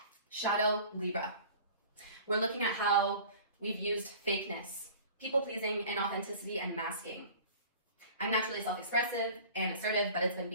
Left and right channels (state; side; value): inverted; both; correlation -0.44